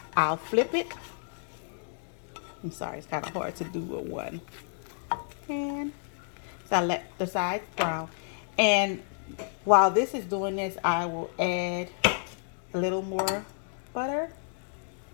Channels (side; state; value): right; silent; digital silence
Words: I'll flip it. I'm sorry, it's kind of hard to do with one hand. So I let the sides brown. And while this is doing this, I will add a little more butter